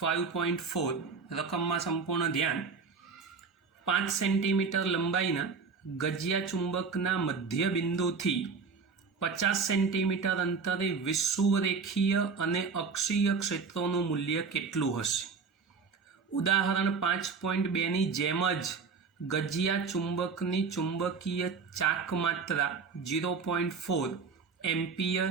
રકમમાં સંપૂર્ણ ધ્યાન. 5 સેન્ટીમીટર લંબાઈના ગજિયા ચુંબકના મધ્ય બિંદુથી 50 સેન્ટીમીટર અંતરે વિષુવરેખીય અને અક્ષીય ક્ષેત્રોનું મૂલ્ય કેટલું હશે? ઉદાહરણ 5.2ની જેમ જ ગજિયા ચુંબકની ચુંબકીય ચાકમાત્રા 0.4 એમ્પિયર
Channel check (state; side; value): quieter; left; 5.2 dB